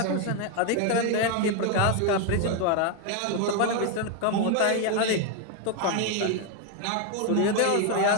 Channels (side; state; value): both; different; correlation 0.01